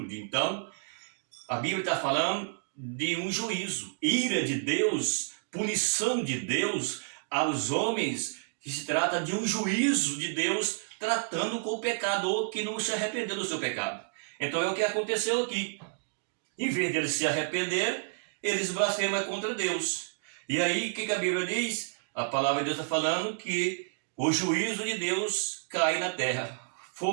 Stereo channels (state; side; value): silent; left; digital silence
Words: então a Bíblia está falando de um juízo, ira de Deus, punição de Deus aos homens, que se trata de um juízo de Deus tratando com o pecador que não se arrependeu do seu pecado. Então é o que aconteceu aqui. Em vez de eles se arrepender, eles blasfemam contra Deus. E aí o que a Bíblia diz? A palavra de Deus está falando que o juízo de Deus cai na terra.